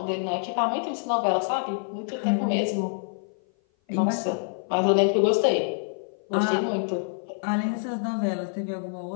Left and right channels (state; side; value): silent; right; 56 dB below the other